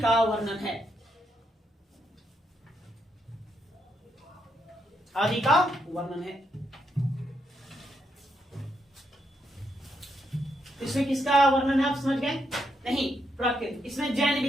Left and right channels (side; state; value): both; normal; correlation 0.79